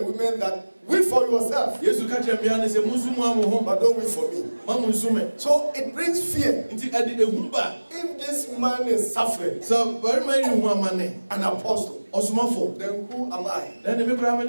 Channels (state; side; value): inverted; both; correlation -1.00